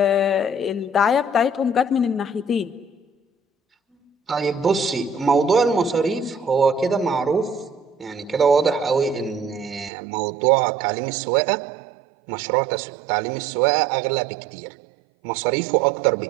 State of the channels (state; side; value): drops out; left; at 9.9 s